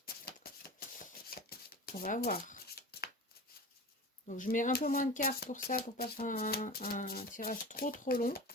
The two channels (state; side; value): normal; both; correlation 0.33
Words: on va voir. Donc, je mets un peu moins de cartes pour ça, pour pas faire un tirage trop long.